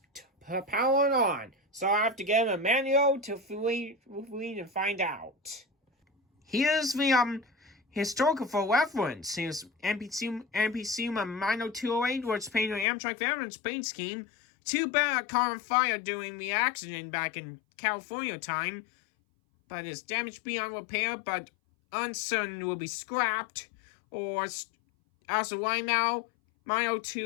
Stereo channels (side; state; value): right; drops out; at 12.9 s